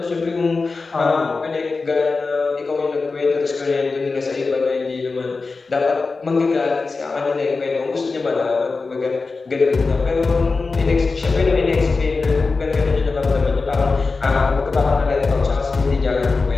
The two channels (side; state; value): right; quieter; 4.1 dB